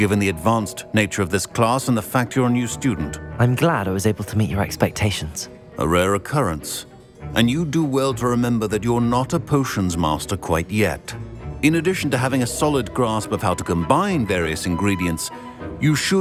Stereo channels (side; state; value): both; identical; correlation 1.00